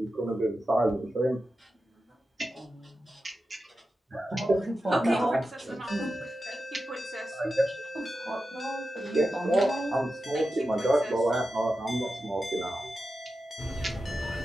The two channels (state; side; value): normal; both; correlation 0.91